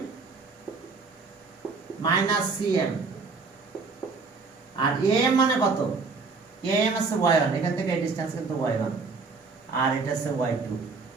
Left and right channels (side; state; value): left; quieter; 4.4 dB